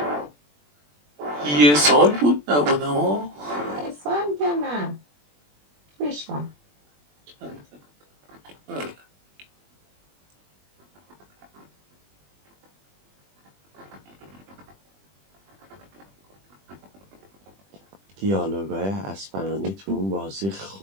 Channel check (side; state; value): left; late; 20 ms